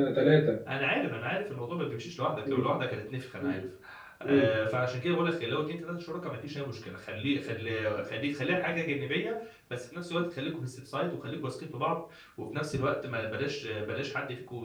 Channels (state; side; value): identical; both; correlation 1.00